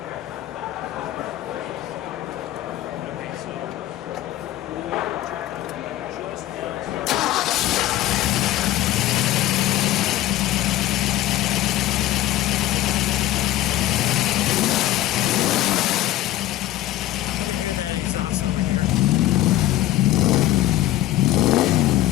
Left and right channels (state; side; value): quieter; right; 14.2 dB